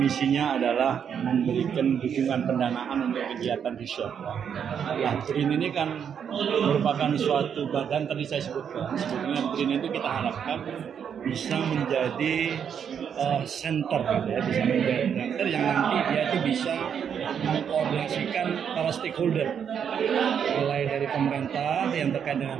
adalah memberikan dukungan pendanaan untuk kegiatan riset. Nah, BRIN ini kan merupakan suatu badan tadi saya sebutkan. Sebetulnya BRIN itu kita harapkan bisa menjadi center, ya, bisa menjadi center yang nanti dia itu bisa mengkoordinasikan para stakeholder, mulai dari pemerintah yang terkait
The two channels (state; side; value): quieter; left; 7.9 dB